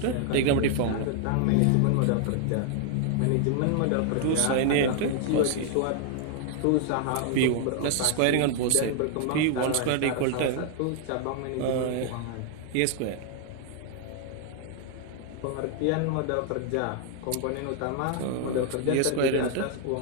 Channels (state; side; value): different; both; correlation 0.00